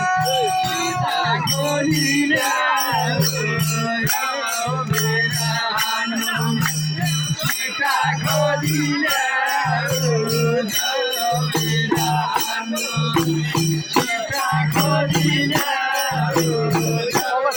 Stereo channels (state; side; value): identical; both; correlation 1.00